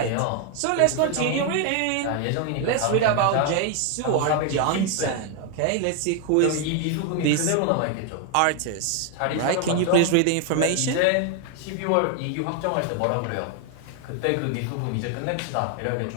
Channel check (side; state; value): both; different; correlation 0.01